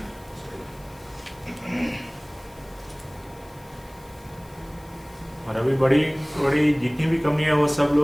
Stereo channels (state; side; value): noise; left; hiss, 27 dB below the sound